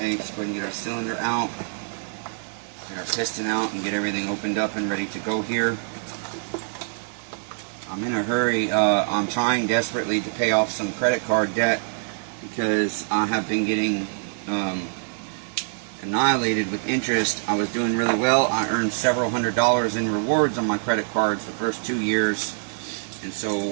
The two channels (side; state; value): left; silent; 60 dB below the other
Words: let's go ahead and get our cylinder out, get our piston out, and get everything opened up and ready to go here. I'm in a hurry. I'm trying desperately to pay off some credit card debt because I have been getting annihilated with interest. I was doing really well. I earned several $100s in rewards on my credit cards the first 2 years. And so